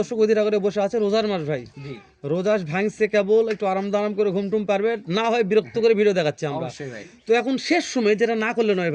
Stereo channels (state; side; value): identical; both; correlation 1.00